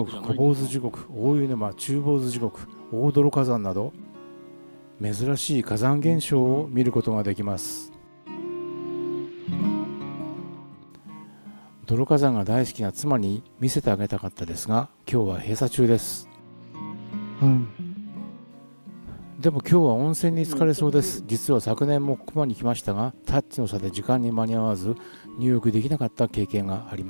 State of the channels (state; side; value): inverted; both; correlation -1.00